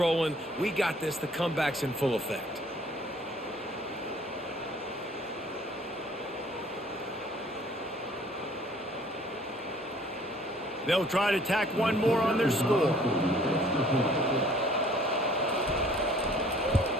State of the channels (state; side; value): normal; both; correlation 0.56